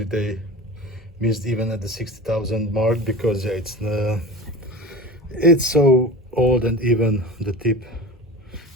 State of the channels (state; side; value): normal; both; correlation 0.33